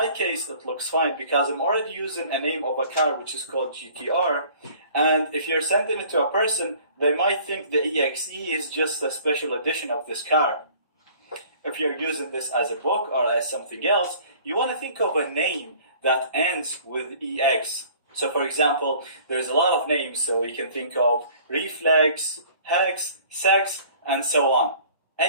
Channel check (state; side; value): inverted; both; correlation -0.51